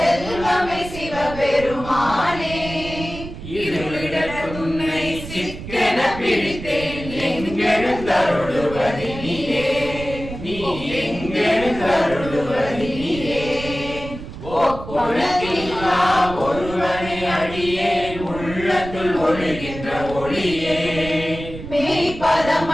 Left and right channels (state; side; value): noise; right; rumble, 11 dB below the sound